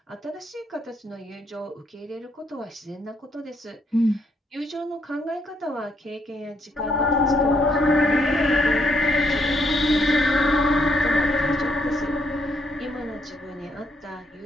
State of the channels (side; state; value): both; normal; correlation 0.73